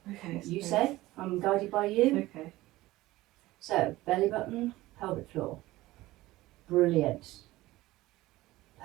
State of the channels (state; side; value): quieter; left; 17.8 dB